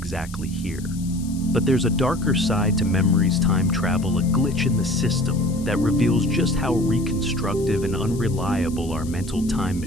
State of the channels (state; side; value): noise; left; hiss, 19 dB below the sound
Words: here. But there's a darker side to memory's time travel, a glitch in the system that reveals just how reconstructive and unreliable our mental time